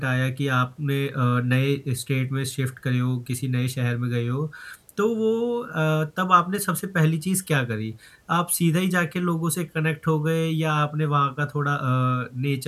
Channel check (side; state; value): both; identical; correlation 1.00